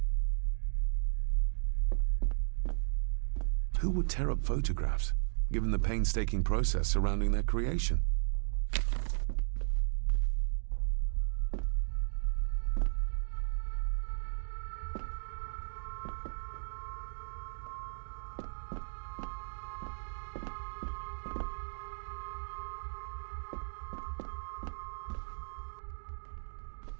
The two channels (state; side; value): silent; left; digital silence